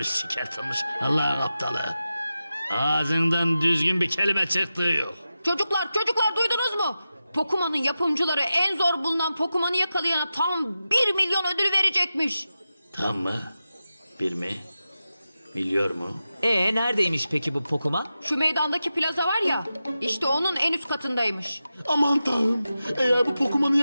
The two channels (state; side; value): inverted; both; correlation -0.92